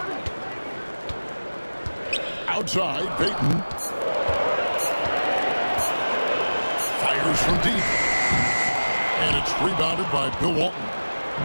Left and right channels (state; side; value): inverted; both; correlation -1.00